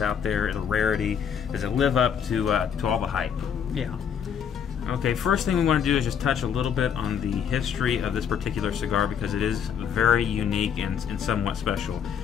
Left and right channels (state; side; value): quieter; right; 7.8 dB